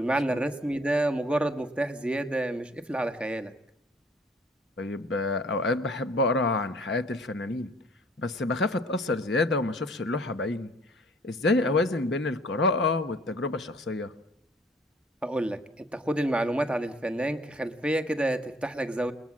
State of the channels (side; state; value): both; normal; correlation 0.56